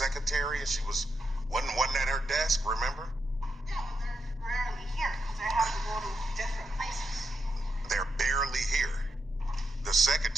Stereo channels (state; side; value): normal; both; correlation 0.84